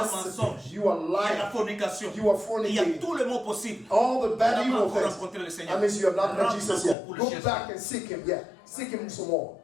gossiping, mensonge, you are il y a la lying, fornication, you are il y a fornicating, tous les mots possibles. all the Tu bad n'as pas evil encore things. rencontré le That Seigneur. means you have not met Rentre Jesus encore yet. pour le Go chercher. back and seek him. Yeah, seek him some more.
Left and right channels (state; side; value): drops out; right; at 7.0 s